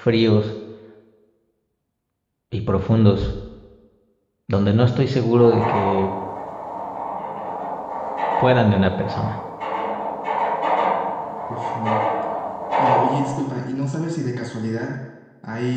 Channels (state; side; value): identical; both; correlation 1.00